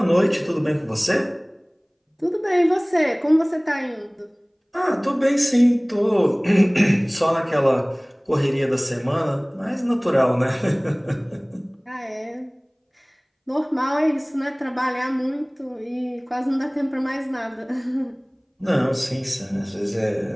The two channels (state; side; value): identical; both; correlation 1.00